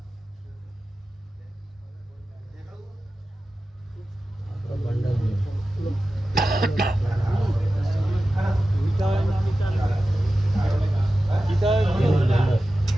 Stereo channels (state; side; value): normal; both; correlation 0.94